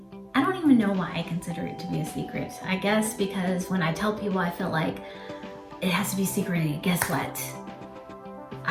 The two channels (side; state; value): both; identical; correlation 1.00